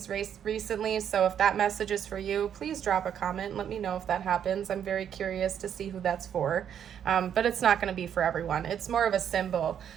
recently. So if that message is for you, please drop a comment and let me know if that happens. I'm very curious to see who that's for, but it's not gonna be for everyone. It's more of a symbol.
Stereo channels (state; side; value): quieter; left; 9.0 dB